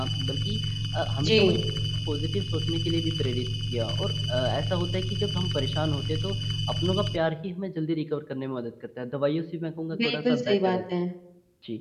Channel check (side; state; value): both; identical; correlation 1.00